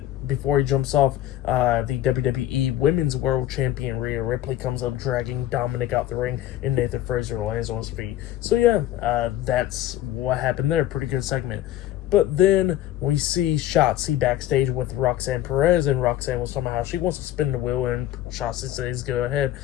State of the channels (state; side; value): quieter; right; 13.2 dB